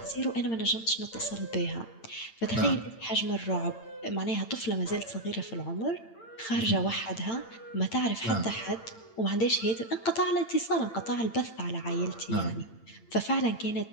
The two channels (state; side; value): late; right; 8.9 ms